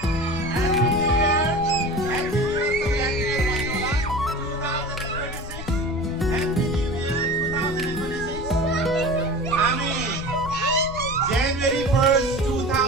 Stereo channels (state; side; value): noise; left; rumble, 10 dB below the sound